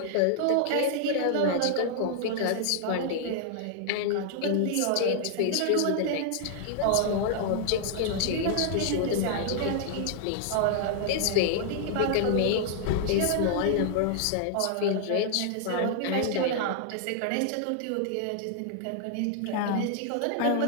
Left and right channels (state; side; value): different; both; correlation -0.01